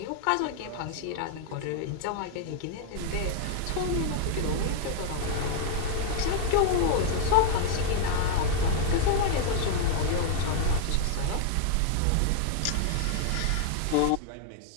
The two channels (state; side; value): different; both; correlation 0.00